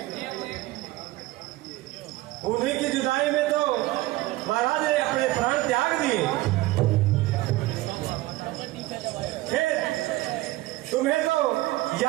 उन्हीं की जुदाई में तो महाराज ने अपने प्राण त्याग दिए। फिर तुम्हें तो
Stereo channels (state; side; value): quieter; left; 18.3 dB